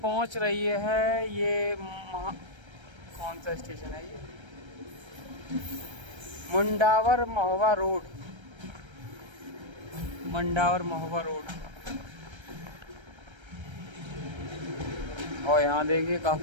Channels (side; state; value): left; late; 1.3 ms